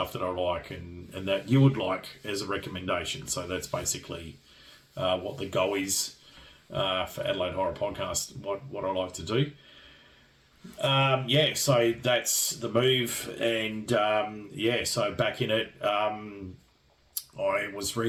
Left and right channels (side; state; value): both; identical; correlation 1.00